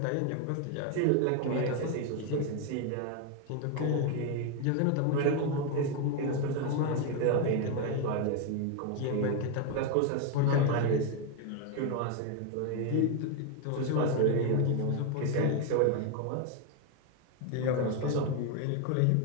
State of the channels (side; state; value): both; different; correlation 0.01